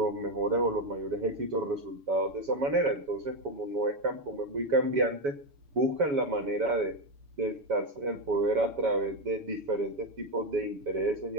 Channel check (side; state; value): left; late; 7.1 ms